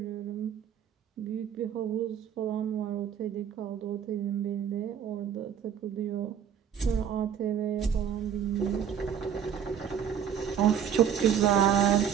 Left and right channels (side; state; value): left; quieter; 8.5 dB